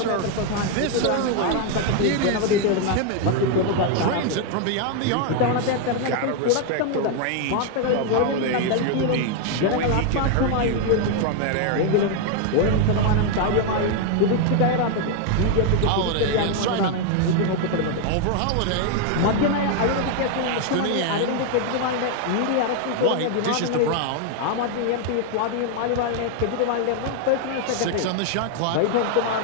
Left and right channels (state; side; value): different; both; correlation 0.01